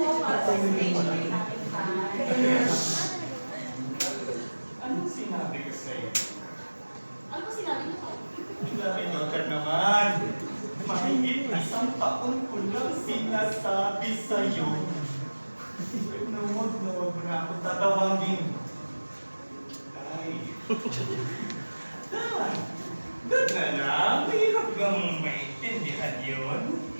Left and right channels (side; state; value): both; inverted; correlation -1.00